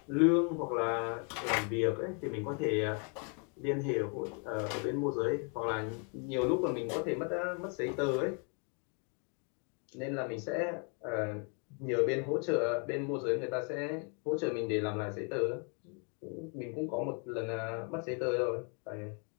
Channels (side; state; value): right; quieter; 38.8 dB